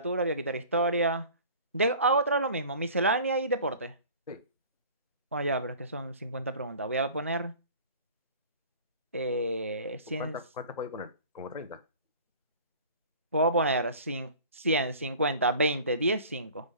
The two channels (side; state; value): both; inverted; correlation -0.44